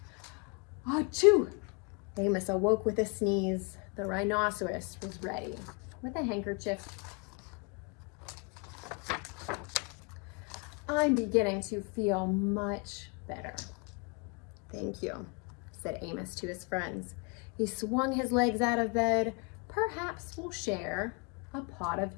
Achoo! Amos awoke with a sneeze. The rhinoceros was ready with a handkerchief. "I'm beginning to feel much better." "Thank you," said Amos to his friends. He swung his legs out of bed. "Perhaps we'll share a pot of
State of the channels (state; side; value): quieter; right; 33.1 dB